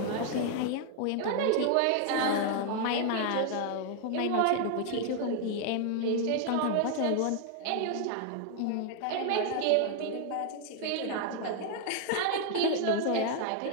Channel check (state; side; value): different; both; correlation 0.00